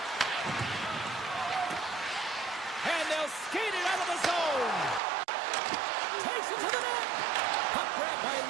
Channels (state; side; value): drops out; left; at 5.0 s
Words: And they'll skate it out of the zone. Takes it to the net. Puck grab by